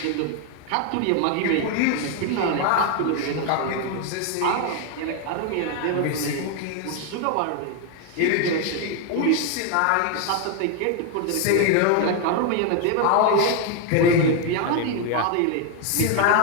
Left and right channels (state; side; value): different; both; correlation 0.01